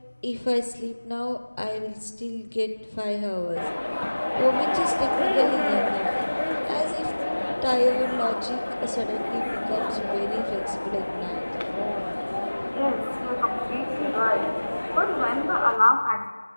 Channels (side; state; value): both; inverted; correlation -1.00